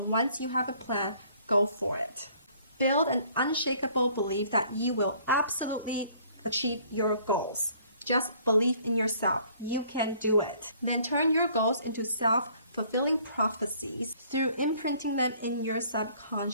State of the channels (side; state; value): both; inverted; correlation -0.59